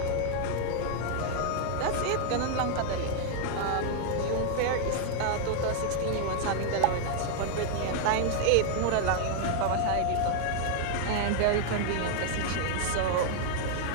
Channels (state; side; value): different; both; correlation 0.00